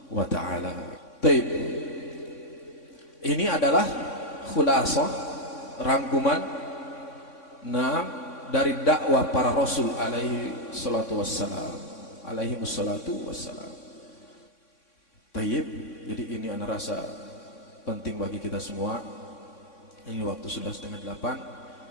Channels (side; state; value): right; late; 3.6 ms